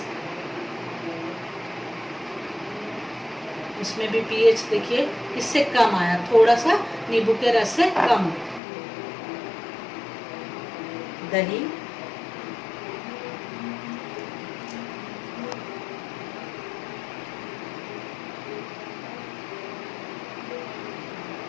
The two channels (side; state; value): right; drops out; at 8.6 s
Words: इसमें भी पीएच देखिए इससे कम आया, थोड़ा सा नींबू के रस से कम। दही,